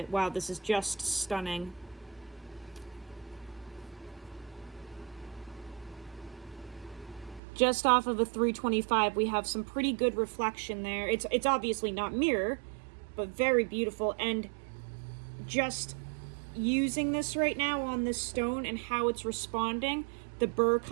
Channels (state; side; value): drops out; left; at 7.4 s